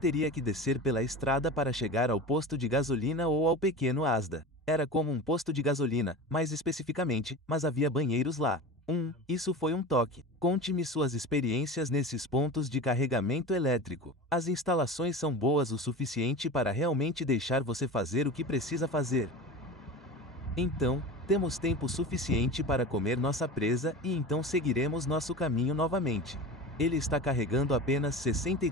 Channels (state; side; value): normal; both; correlation 0.31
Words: que descer pela estrada para chegar ao posto de gasolina ou ao pequeno Asda. Era como um posto de gasolina, mais especificamente, mas havia banheiros lá. Isso foi um toque. Conte-me suas experiências nesses pontos de carregamento elétrico. As instalações são boas o suficiente para realmente deixar você fazer o que precisa fazer. Então, temos tempo suficiente para comer nossa presa e então seguiremos nosso caminho novamente. Ele está carregando apenas